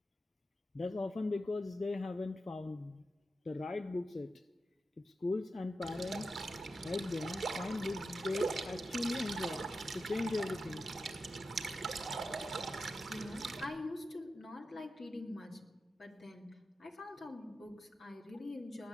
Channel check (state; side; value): normal; both; correlation 0.90